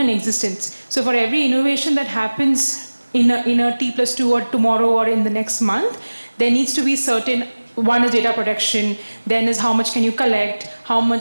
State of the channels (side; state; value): both; inverted; correlation -1.00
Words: existence. So for every innovation that happens in a T+2 or tomorrow or in the next month, there needs to be certain, one is data protection, then is how much can you collect,